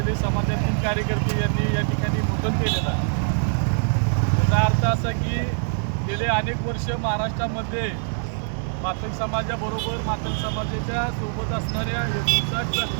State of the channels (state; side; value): silent; left; 60 dB below the other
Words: समाजातील कार्यकर्ते यांनी या ठिकाणी मुंडन केलेलं आहे। त्याचा अर्थ असा की गेले अनेक वर्ष महाराष्ट्रामध्ये मातंग समाजाबरोबर मातंग समाजाच्या सोबत असणाऱ्या 59